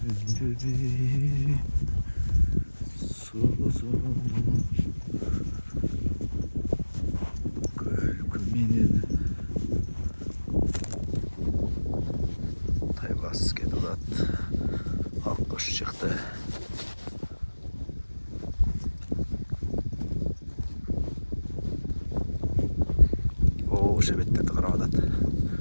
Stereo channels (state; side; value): inverted; both; correlation -1.00